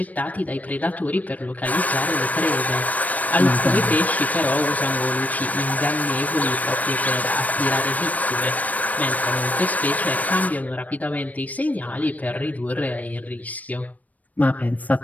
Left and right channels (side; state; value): right; late; 0.073 ms